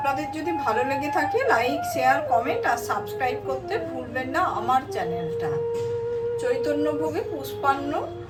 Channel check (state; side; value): identical; both; correlation 1.00